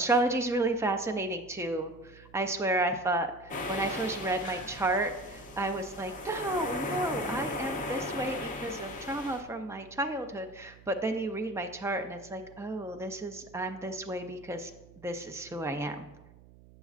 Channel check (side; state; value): right; noise; hum, 22 dB below the sound